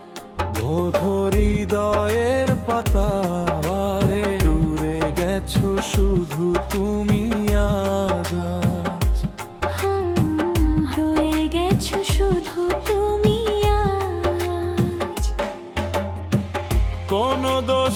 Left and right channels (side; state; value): both; identical; correlation 1.00